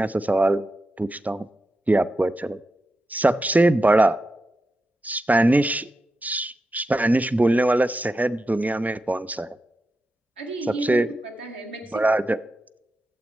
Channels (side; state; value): both; normal; correlation 0.89